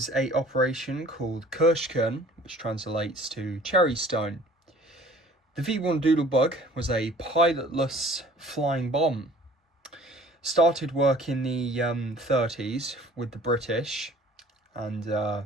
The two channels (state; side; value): normal; both; correlation 0.51